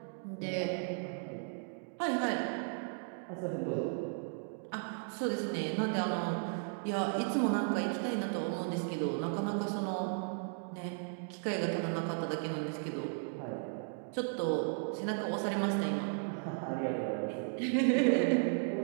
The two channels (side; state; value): left; silent; 54 dB below the other